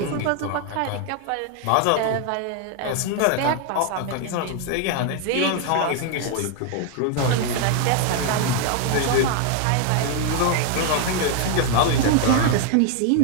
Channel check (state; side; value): different; both; correlation 0.01